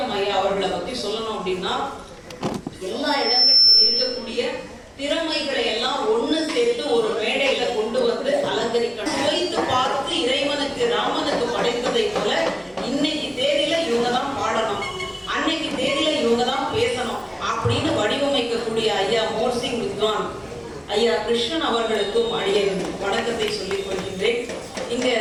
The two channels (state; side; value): identical; both; correlation 1.00